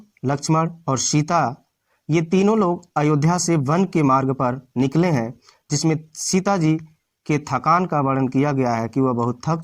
लक्ष्मण और सीता ये तीनों लोग अयोध्या से वन के मार्ग पर निकले हैं, जिसमें सीता जी के थकान का वर्णन किया गया है कि वह बहुत थक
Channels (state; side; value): identical; both; correlation 1.00